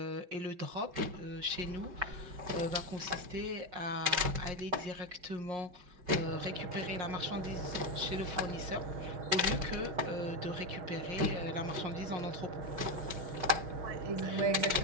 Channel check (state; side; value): late; left; 5.3 ms